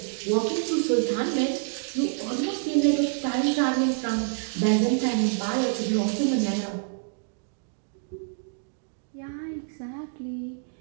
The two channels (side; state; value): left; silent; 60 dB below the other